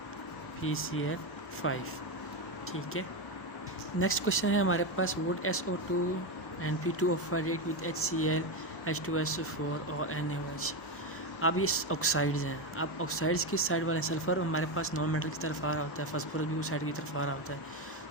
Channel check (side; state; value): both; normal; correlation 0.12